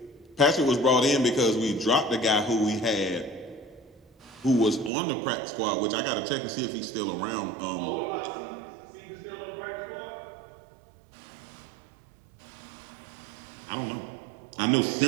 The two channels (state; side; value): drops out; left; at 4.9 s